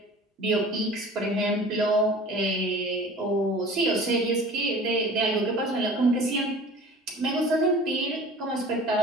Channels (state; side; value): normal; both; correlation 0.43